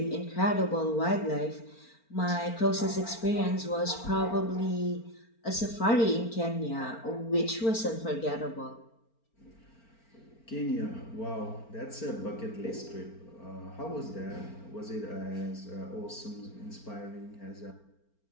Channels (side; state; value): right; late; 4.4 ms